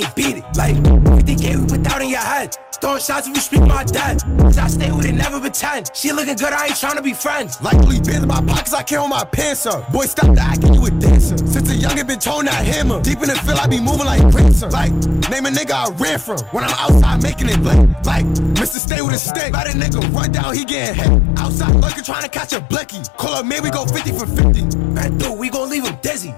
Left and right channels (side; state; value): right; drops out; at 18.8 s